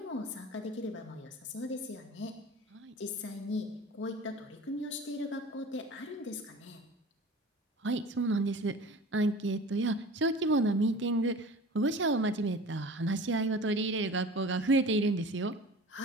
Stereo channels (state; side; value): normal; both; correlation 0.39